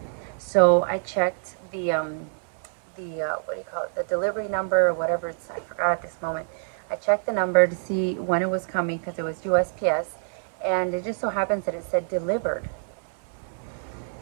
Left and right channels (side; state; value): left; silent; 60 dB below the other